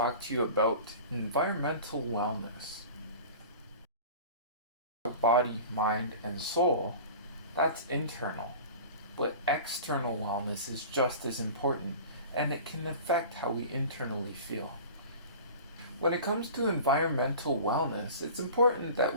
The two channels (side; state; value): both; inverted; correlation -0.38